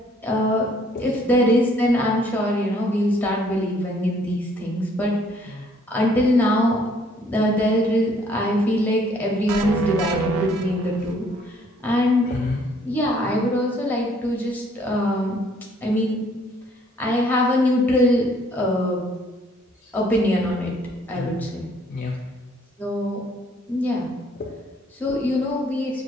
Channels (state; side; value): normal; both; correlation 0.62